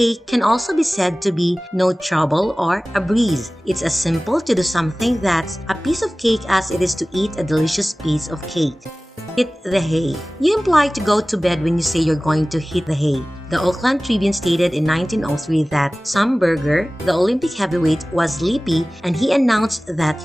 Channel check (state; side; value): normal; both; correlation 0.98